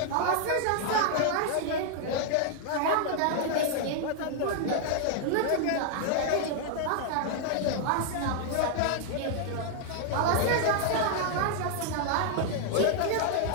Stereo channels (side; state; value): both; different; correlation 0.00